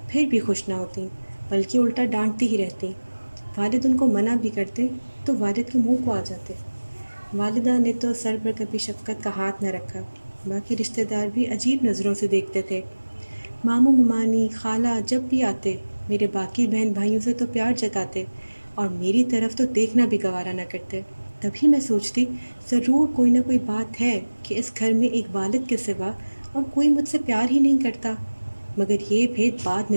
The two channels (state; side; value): inverted; both; correlation -1.00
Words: پھر بھی خوش نہ ہوتیں، بلکہ الٹا ڈانٹتی ہی رہتیں۔ والد ان کو منع بھی کرتے تو والد کے منہ کو آ جاتے۔ والدہ نے تو سر پر کبھی شفقت کا ہاتھ نہ رکھا، باقی رشتہ دار بھی عجیب نظروں سے دیکھتے تھے۔ ماموں ممانی خالہ جب بھی آتے میرے باقی بہن بھائیوں سے تو پیار جتاتے اور میری طرف تو دیکھنا بھی گوارا نہ کرتے۔ تبھی میں سوچتی، ضرور کوئی نہ کوئی بات ہے کہ اس گھر میں ایک والد کے سوا اور کوئی مجھ سے پیار ہی نہیں کرتا۔ مگر یہ بھید بعد